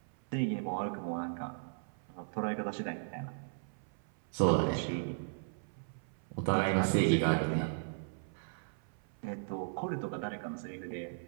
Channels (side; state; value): left; silent; 53 dB below the other